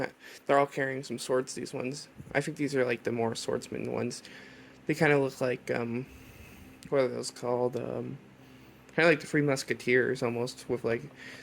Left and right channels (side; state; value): both; identical; correlation 1.00